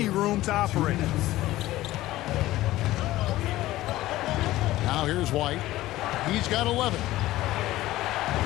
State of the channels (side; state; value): right; quieter; 16.3 dB